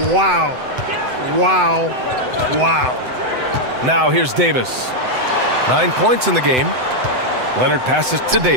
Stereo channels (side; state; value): left; late; 7.9 ms